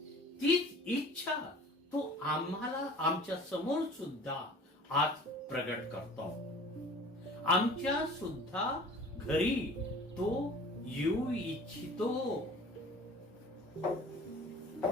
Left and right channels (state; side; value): normal; both; correlation 0.45